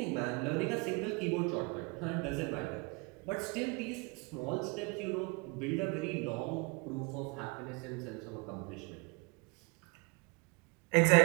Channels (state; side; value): quieter; left; 29.4 dB